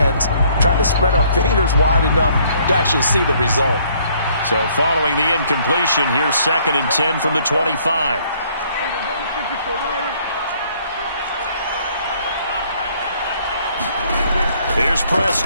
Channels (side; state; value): both; inverted; correlation -0.63